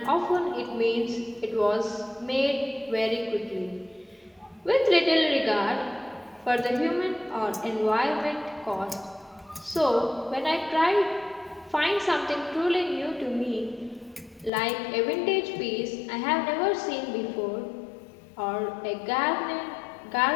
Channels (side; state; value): right; drops out; at 14.5 s